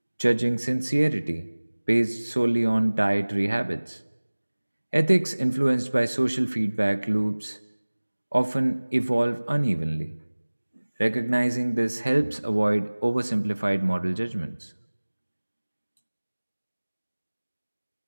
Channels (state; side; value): inverted; both; correlation -1.00